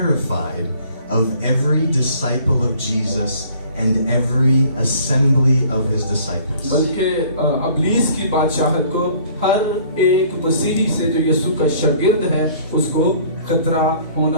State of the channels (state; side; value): inverted; both; correlation -0.55